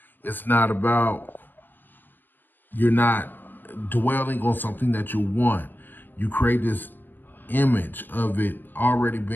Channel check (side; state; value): right; late; 0.092 ms